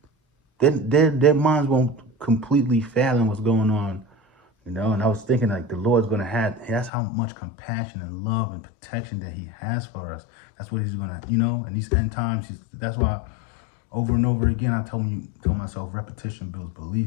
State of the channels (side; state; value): right; drops out; at 6.9 s